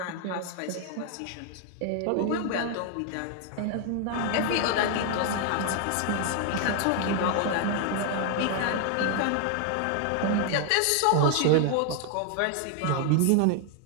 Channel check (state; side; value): different; both; correlation 0.00